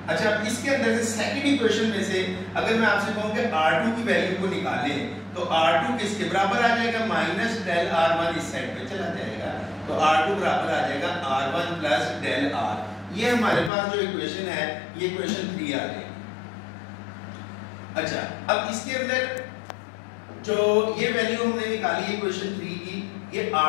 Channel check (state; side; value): drops out; right; at 13.7 s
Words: अच्छा, अब इसके अंदर से सेकंड इक्वेशन में से अगर मैं आपसे कहूं कि r2 की वैल्यू को निकालें तो r2 किसके बराबर आ जाएगा? माइनस डेल r1 इस साइड पे चला जाएगा, तो r2 बराबर आ जाएगा r1 + डेल r. ये हमारे पास जो इक्वेशन है ये इक्वेशन 3 आ जाएगी. अच्छा, अब इसके अंदर जो ये वैल्यू हमने निकाली इक्वेशन 3 की, ये